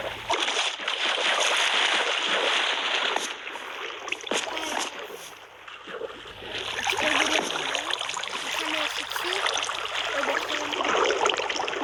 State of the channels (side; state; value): both; identical; correlation 1.00